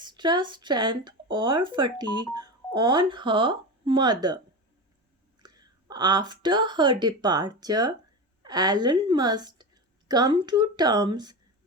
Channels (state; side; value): normal; both; correlation 0.23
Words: strength or fatigue on her mother. After her departure, Ellen must come to terms